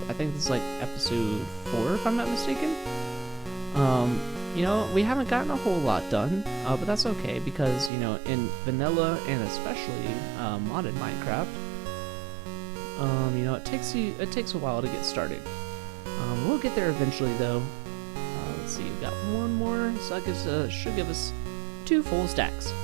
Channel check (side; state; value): left; drops out; at 7.9 s